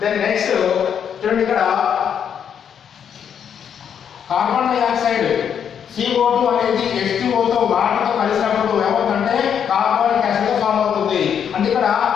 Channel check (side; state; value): right; quieter; 8.2 dB